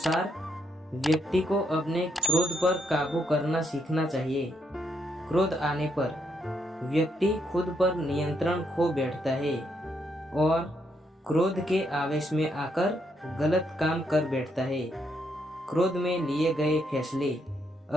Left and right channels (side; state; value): both; normal; correlation 0.76